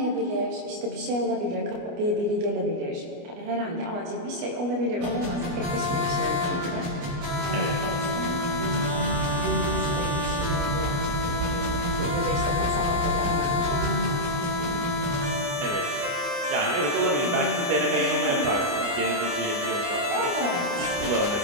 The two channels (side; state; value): left; late; 29 ms